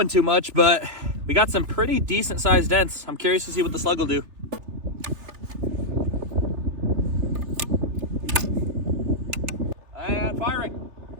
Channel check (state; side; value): late; left; 3.3 ms